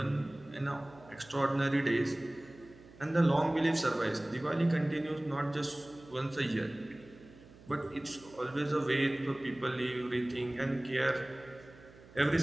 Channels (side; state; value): right; noise; hum, 22 dB below the sound